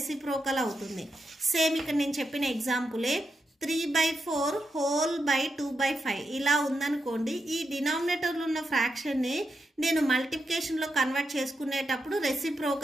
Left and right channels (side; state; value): both; normal; correlation 0.85